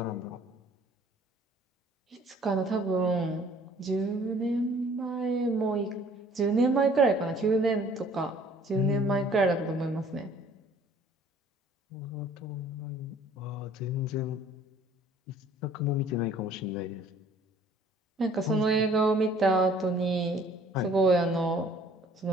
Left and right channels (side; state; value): both; normal; correlation 0.56